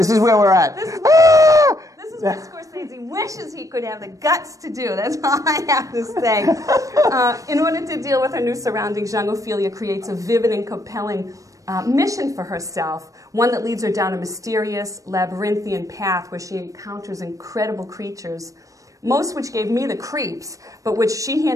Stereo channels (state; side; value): late; left; 0.16 ms